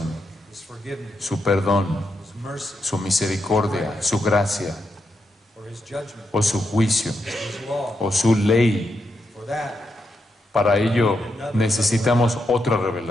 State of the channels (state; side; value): normal; both; correlation 0.84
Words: su perdón, su misericordia, su gracia, o su juicio, o su ley. Para ello necesitamos otra